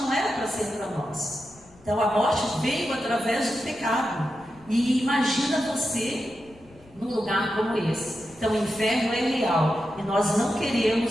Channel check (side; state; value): left; noise; rumble, 26 dB below the sound